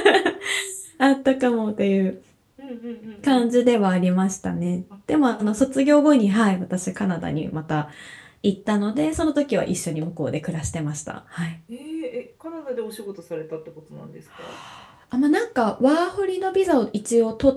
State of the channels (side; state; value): both; identical; correlation 1.00